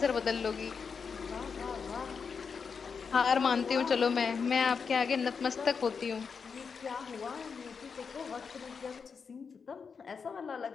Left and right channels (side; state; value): right; quieter; 5.8 dB